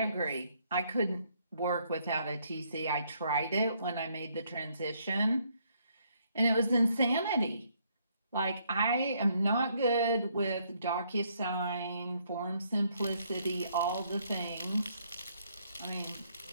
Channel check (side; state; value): both; inverted; correlation -0.70